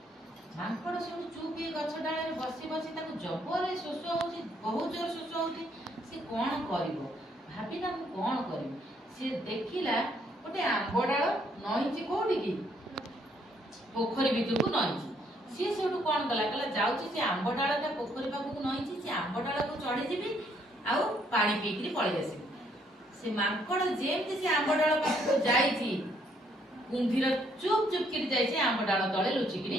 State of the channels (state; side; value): normal; both; correlation 0.69